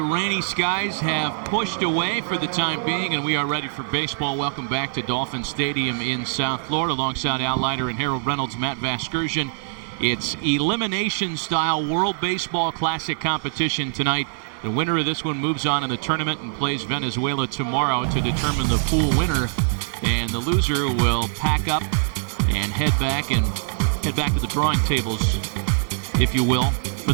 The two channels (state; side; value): silent; left; digital silence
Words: rainy skies have pushed away for the time being, and we are ready for baseball. Welcome back to Dolphin Stadium in South Florida. Alongside Al Leiter and Harold Reynolds, Matt Vasgersian. It's elimination-style World Baseball Classic competition tonight. The winner of this one moves on in the tournament and plays Venezuela tomorrow to determine the pool winner. And the loser will pack up and head back to the drawing tables, if you will, for